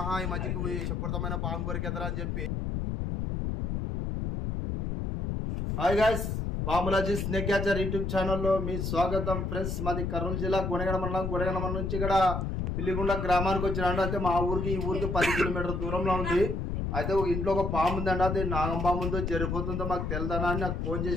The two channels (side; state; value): left; noise; rumble, 2 dB below the sound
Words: ఈ మధ్యకి విషపూరితమైన పాము కొరికెదరా అని చెప్పి. Hi guys, Bamulaji snake catcher YouTube ఛానల్లో మీ స్వాగతం. ఫ్రెండ్స్, మాది కర్నూలు జిల్లా గుణగణ మండలం నుంచి ఇక్కడ పిల్లిగుండ గ్రామానికి వచ్చినాడు. అయితే మా ఊరికి ఈ ఊరికి 10 కిలోమీటర్ల దూరంలో ఉంది. అయితే ఒక ఇంట్లో ఒక పాము ఉందండి. అది నాగం పాము ఉందో జరిపోతుందో మాకు తెలియదనా అని నాకు ఫోన్